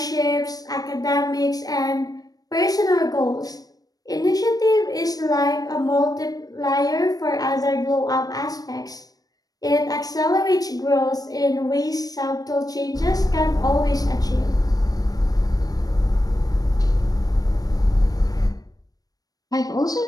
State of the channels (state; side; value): late; right; 0.18 ms